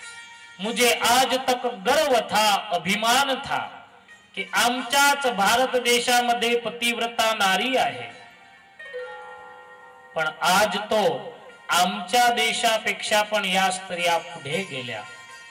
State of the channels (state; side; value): identical; both; correlation 1.00